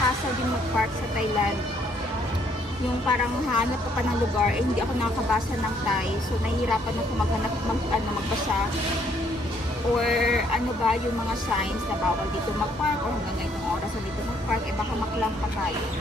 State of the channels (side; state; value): both; normal; correlation 0.67